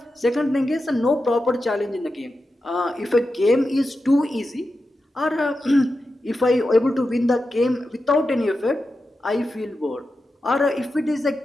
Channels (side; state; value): both; normal; correlation 0.90